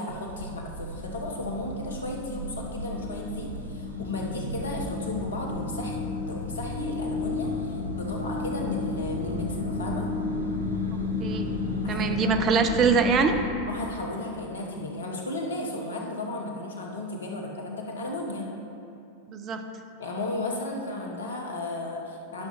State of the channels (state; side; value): normal; both; correlation 0.16